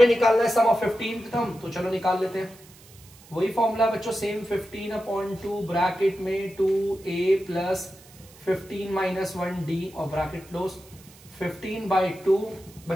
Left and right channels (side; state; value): right; noise; hiss, 24 dB below the sound